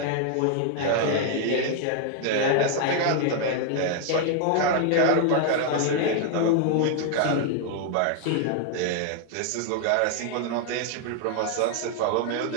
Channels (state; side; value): different; both; correlation 0.00